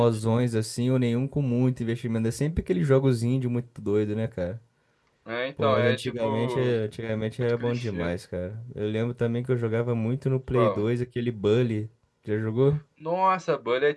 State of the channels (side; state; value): both; identical; correlation 1.00